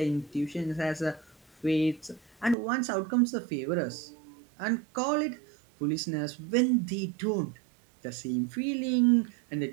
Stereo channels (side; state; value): left; drops out; at 2.6 s